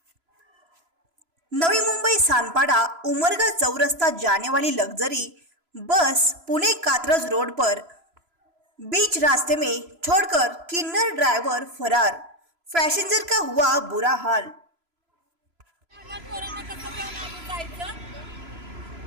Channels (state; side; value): late; left; 3.0 ms